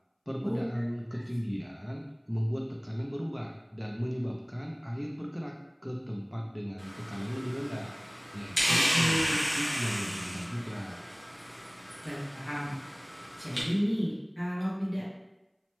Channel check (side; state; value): both; identical; correlation 1.00